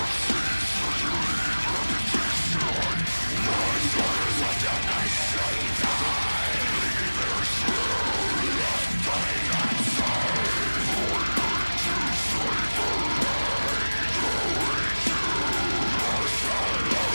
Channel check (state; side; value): inverted; both; correlation -1.00